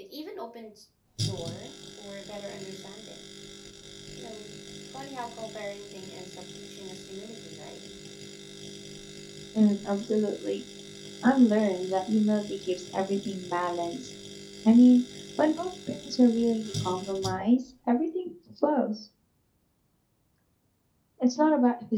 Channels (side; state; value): both; identical; correlation 1.00